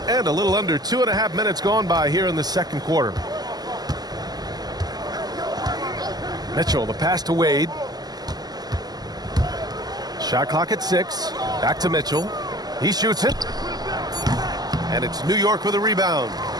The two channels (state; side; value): late; left; 0.20 ms